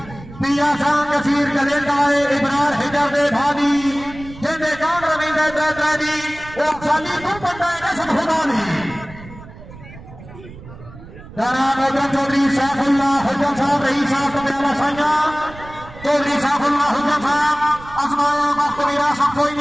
पिया सांग कसीर कलेंदाए इब्रार हिजर दे भादी जेंदे जान रविंदर दैत्रादी ओ खाली तू बंदा रसम खुदा दी जनाब हुजन चौधरी सैफुल्लाह हुजन साहब रही साहब कब्याला साया चौधरी सैफुल्लाह हुजन साहब आसमाया वक्त मेरा सब कोई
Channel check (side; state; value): right; noise; rumble, 17 dB below the sound